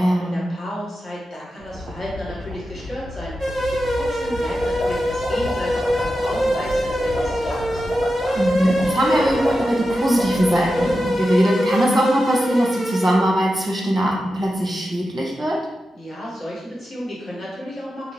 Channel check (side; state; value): both; normal; correlation 0.91